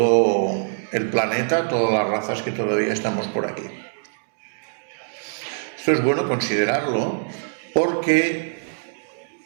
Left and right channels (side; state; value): left; silent; digital silence